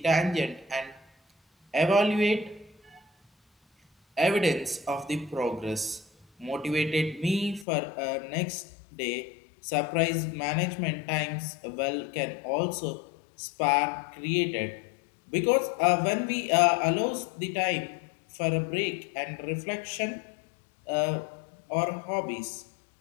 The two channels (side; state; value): right; drops out; at 7.7 s